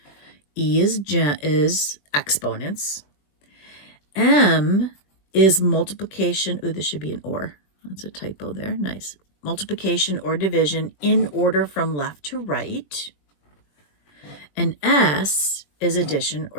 E is exponents. M is multiplication. Ooh, this should be an or. That's a typo there. Nice. Multiplication or division in order from left to right. And S is addition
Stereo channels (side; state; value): right; late; 21 ms